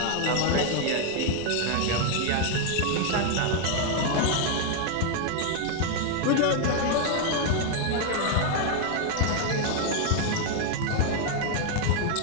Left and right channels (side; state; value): both; different; correlation 0.00